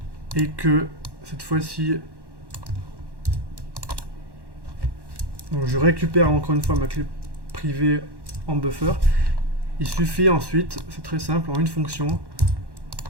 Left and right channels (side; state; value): left; late; 1.1 ms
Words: et que cette fois-ci je récupère encore une fois ma clé privée en buffer, il suffit ensuite, c'est très simple, en une fonction,